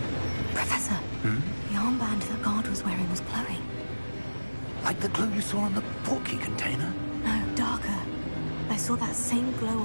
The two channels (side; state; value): both; inverted; correlation -1.00